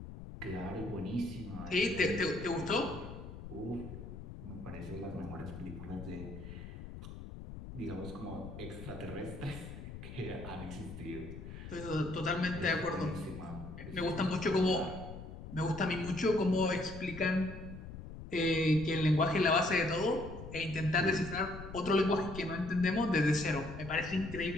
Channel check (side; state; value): left; noise; rumble, 11 dB below the sound